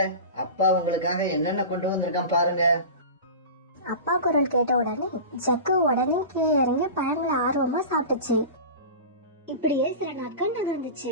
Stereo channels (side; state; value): both; inverted; correlation -0.31